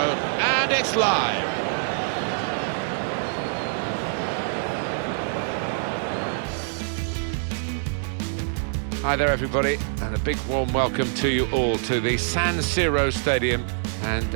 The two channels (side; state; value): left; silent; digital silence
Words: and it's live. Hi there, everybody, and a big warm welcome to you all to the San Siro Stadium. And